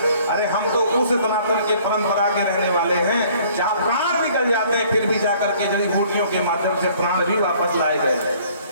अरे हम तो उस सनातन के परंपरा के रहने वाले हैं जहाँ प्राण निकल जाते हैं, फिर भी जाकर के जड़ी बूटियों के माध्यम से प्राण भी वापस लाए गए।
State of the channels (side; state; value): both; inverted; correlation -0.56